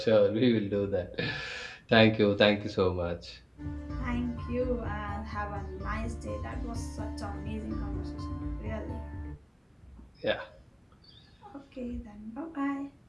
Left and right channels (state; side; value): identical; both; correlation 1.00